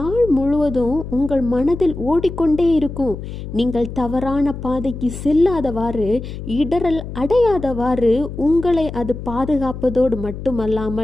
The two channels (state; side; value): noise; left; hum, 9 dB below the sound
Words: முழுவதும் உங்கள் மனதில் ஓடிக்கொண்டே இருக்கும். நீங்கள் தவறான பாதைக்கு செல்லாதவாறு, இடரல் அடையாதவாறு உங்களை அது பாதுகாப்பதோடு